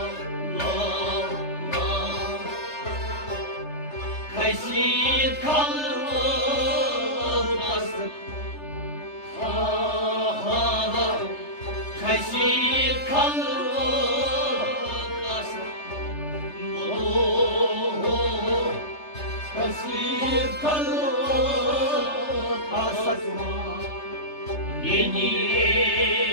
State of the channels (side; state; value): right; late; 3.3 ms